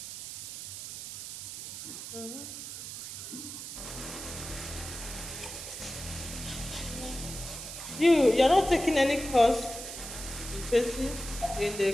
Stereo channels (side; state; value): right; noise; hiss, 9 dB below the sound